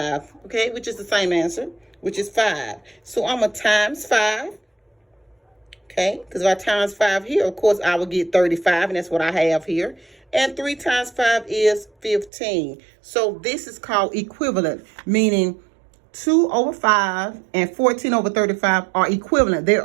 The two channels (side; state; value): left; drops out; at 12.3 s